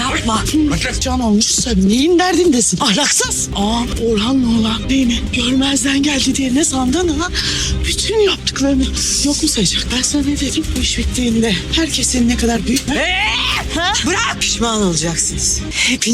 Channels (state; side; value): identical; both; correlation 1.00